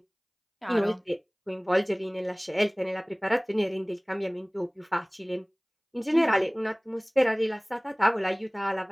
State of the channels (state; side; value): identical; both; correlation 1.00